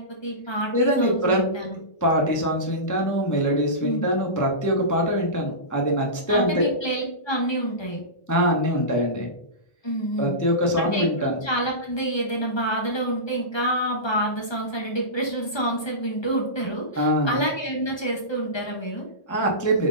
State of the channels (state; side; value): late; right; 1.3 ms